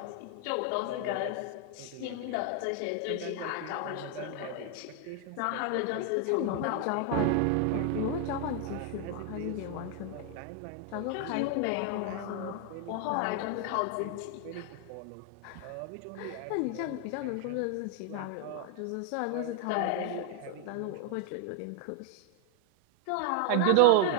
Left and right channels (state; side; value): different; both; correlation 0.00